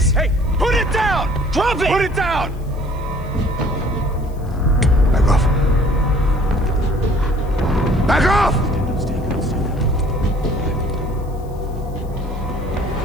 Hey, put it down! Drop it! Put it down! Back off. Back off!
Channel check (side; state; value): left; noise; hiss, 29 dB below the sound